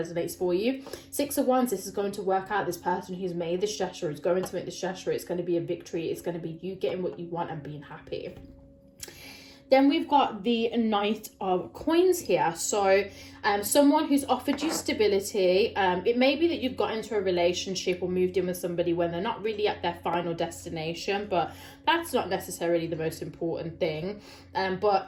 for you. Six of Wands, this is going to work out. This person who's made this gesture is going to make this gesture. It's going to be a victory. It's going to be you getting what you want and being happy. Then we've got the Knight of Coins here. So someone who's offered you stability. It may be that you've got into a relationship or moved in with somebody when they're not really at their final destination, but that's not necessarily the most important thing.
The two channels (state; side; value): identical; both; correlation 1.00